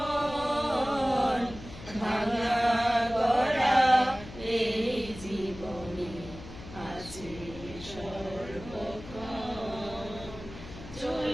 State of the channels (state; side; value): noise; left; hum, 15 dB below the sound